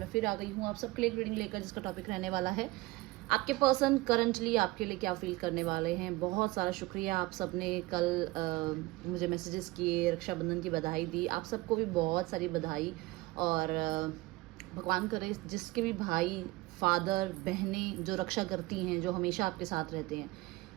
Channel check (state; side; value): quieter; left; 20.9 dB